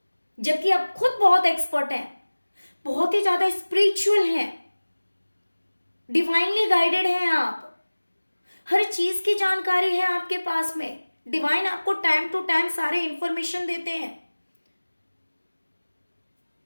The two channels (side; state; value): both; inverted; correlation -1.00